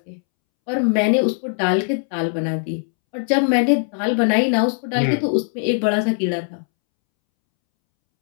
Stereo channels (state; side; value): silent; right; 66 dB below the other